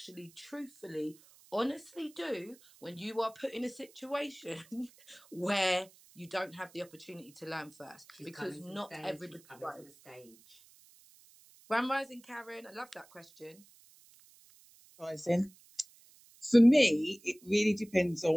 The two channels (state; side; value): noise; right; hiss, 26 dB below the sound